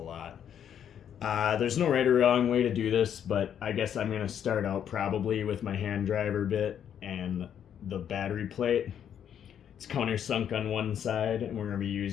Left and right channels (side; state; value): right; quieter; 9.1 dB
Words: lot. There's no right or wrong way to do this, but I guess I'm going to start out probably with my hand driver bit and the battery plate. It's countersunk on one side, and we're going to be